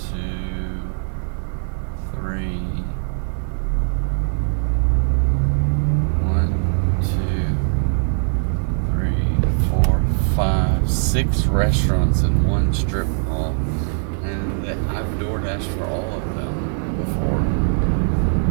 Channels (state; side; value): silent; left; digital silence